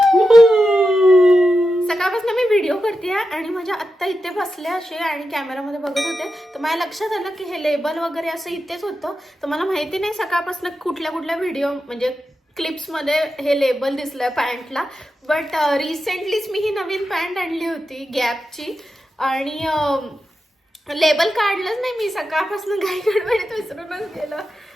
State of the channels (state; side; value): normal; both; correlation 0.90